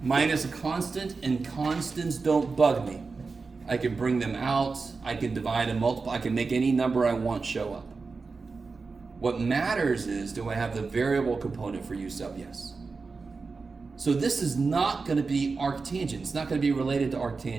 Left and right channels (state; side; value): quieter; left; 4.4 dB